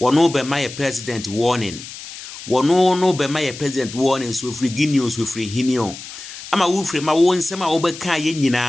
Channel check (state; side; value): noise; left; hiss, 13 dB below the sound